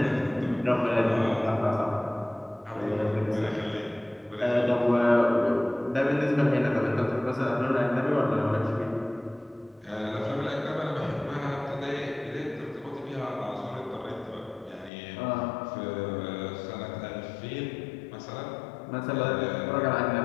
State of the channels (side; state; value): right; drops out; at 14.9 s